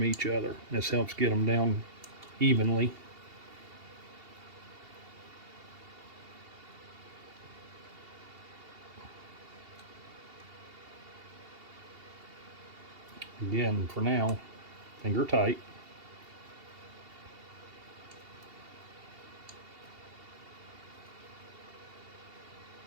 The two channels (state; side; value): late; left; 2.8 ms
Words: each other. This helps get them down evenly. Again, for now, finger tight.